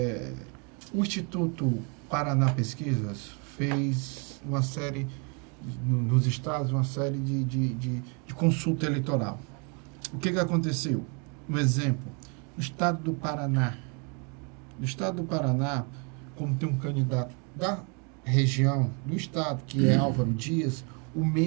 O Instituto Paraná Pesquisas fez uma série, nos estados, uma série de consulta eleitoral. O que aconteceu? Um exemplo, no estado do Paraná. No estado do Paraná, como tem um candidato da região, do estado, que é Álvaro Dias, o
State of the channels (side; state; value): left; quieter; 34.9 dB